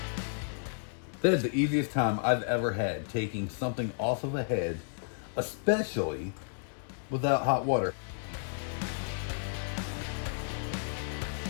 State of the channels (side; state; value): right; silent; digital silence